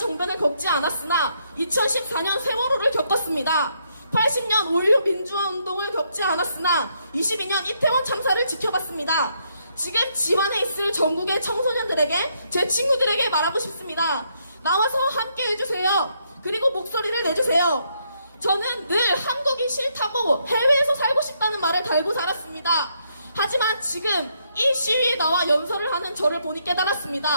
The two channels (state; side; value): inverted; both; correlation -0.75